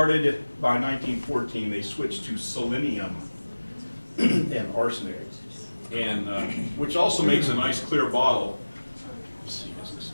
by 1914, they switched to selenium and arsenic, and which also makes a nice clear bottle. Let's see,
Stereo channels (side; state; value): both; inverted; correlation -1.00